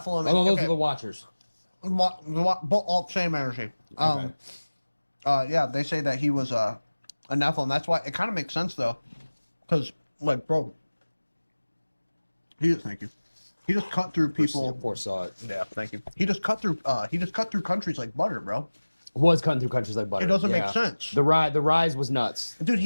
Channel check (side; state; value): both; inverted; correlation -1.00